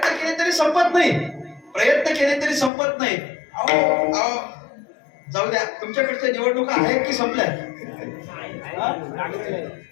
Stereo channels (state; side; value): drops out; right; at 2.7 s